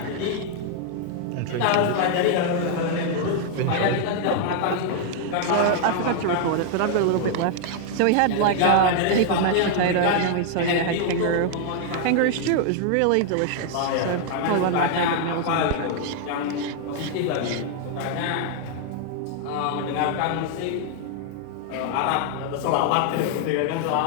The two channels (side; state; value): both; different; correlation 0.00